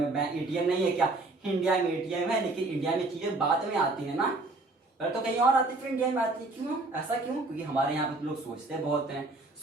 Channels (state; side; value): quieter; left; 3.1 dB